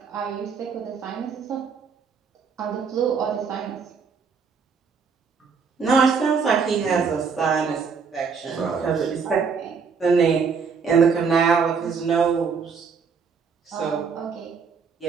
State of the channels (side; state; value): left; quieter; 5.6 dB